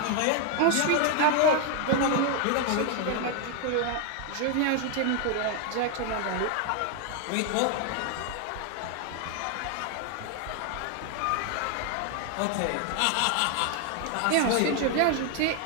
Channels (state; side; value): different; both; correlation 0.01